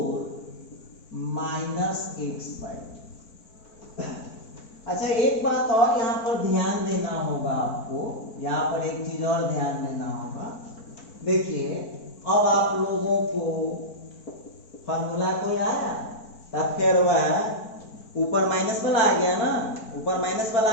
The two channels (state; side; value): late; right; 4.5 ms